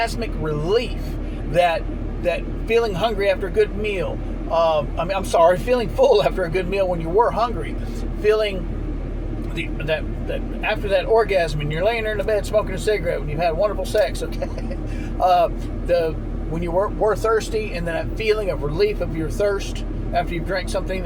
relief, that feeling hungry after a good meal, feeling full after a good meal when you were hungry, feeling that after that orgasm and you're laying there in the bed smoking a cigarette when you've had wonderful sex, okay, when you were thirsty, and then that feeling of relief of your thirst after you've drank something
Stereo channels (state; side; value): identical; both; correlation 1.00